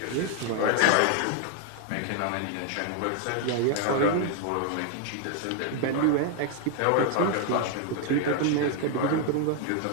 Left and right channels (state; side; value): different; both; correlation 0.00